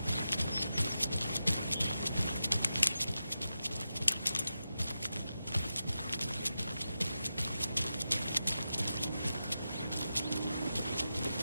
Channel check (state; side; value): inverted; both; correlation -0.90